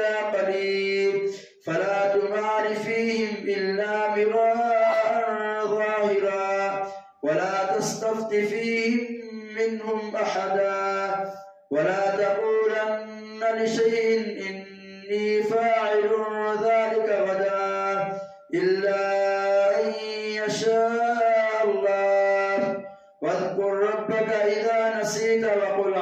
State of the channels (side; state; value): both; identical; correlation 1.00